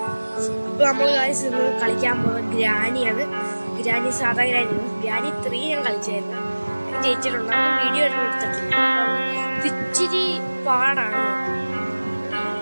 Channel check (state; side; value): inverted; both; correlation -1.00